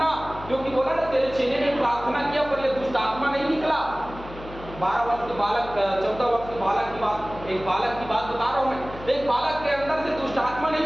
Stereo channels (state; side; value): noise; left; hum, 15 dB below the sound